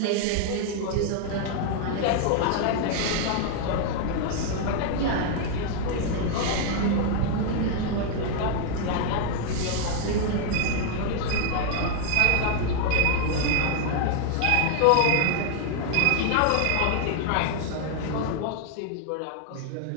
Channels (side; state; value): both; different; correlation 0.00